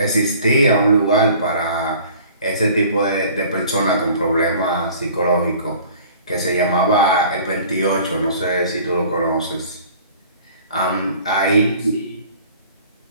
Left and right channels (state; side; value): inverted; both; correlation -0.49